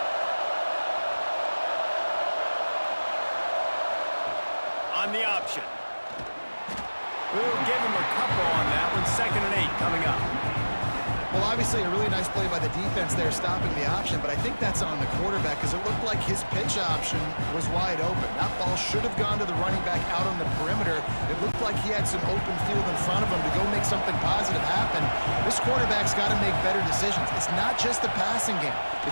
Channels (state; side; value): inverted; both; correlation -1.00